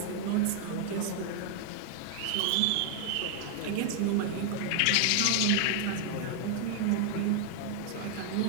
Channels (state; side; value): different; both; correlation 0.00